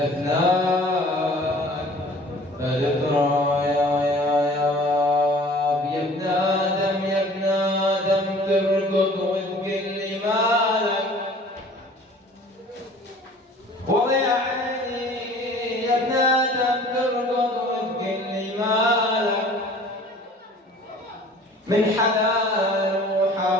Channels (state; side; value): normal; both; correlation 0.48